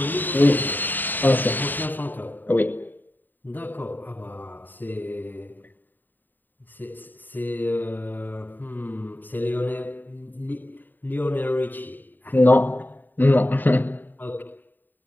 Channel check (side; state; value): right; late; 0.090 ms